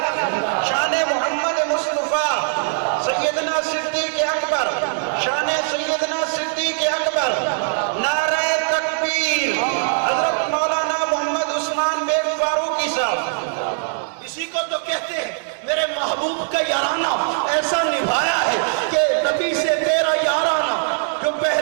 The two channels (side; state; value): left; silent; digital silence